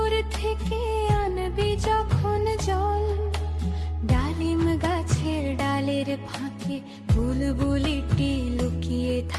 থেকে আনবি যখন জল। ডালিম গাছের ডালের ফাঁকে বুলবুলিটি লুকিয়ে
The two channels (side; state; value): both; identical; correlation 1.00